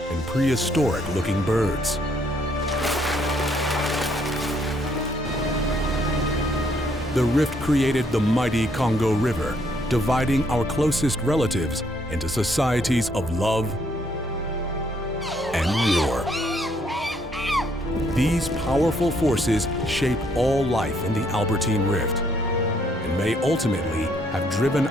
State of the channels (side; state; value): both; normal; correlation 0.69